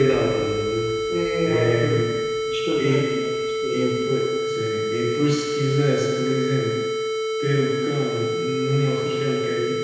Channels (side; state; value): both; identical; correlation 1.00